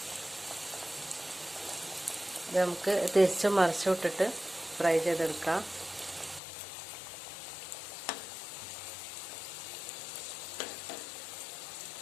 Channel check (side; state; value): right; drops out; at 6.4 s